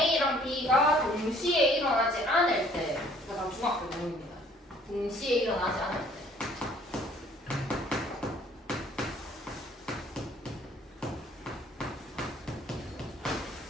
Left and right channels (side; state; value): both; normal; correlation 0.58